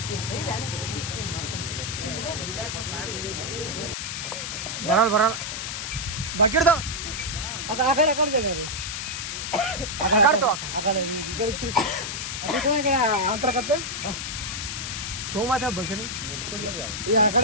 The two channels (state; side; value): noise; left; hiss, 4 dB below the sound